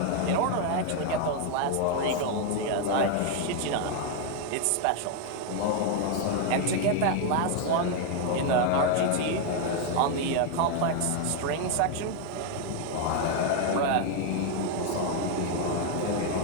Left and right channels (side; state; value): both; different; correlation 0.01